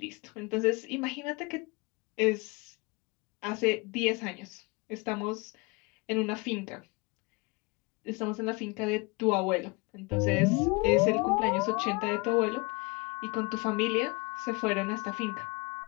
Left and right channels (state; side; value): quieter; right; 27.3 dB